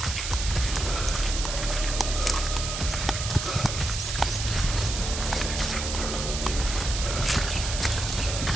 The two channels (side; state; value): right; noise; hiss, 4 dB below the sound